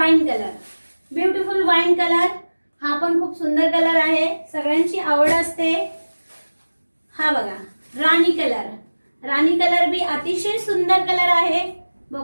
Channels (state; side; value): inverted; both; correlation -1.00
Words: colour, beautiful wine colour, हा पण खूप सुंदर कलर आहे, सगळ्यांची आवड असते। हा बघा राणी कलर, राणी कलर भी अतिशय सुंदर कलर आहे,